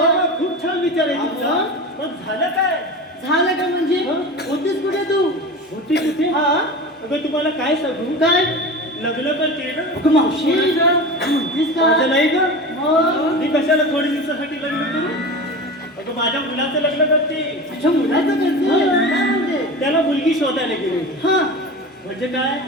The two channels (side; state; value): both; normal; correlation 0.30